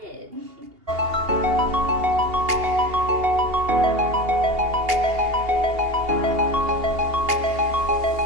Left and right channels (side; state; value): left; late; 2.8 ms